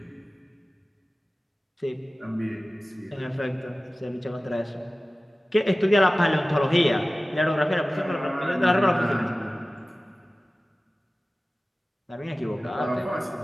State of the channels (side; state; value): both; normal; correlation 0.97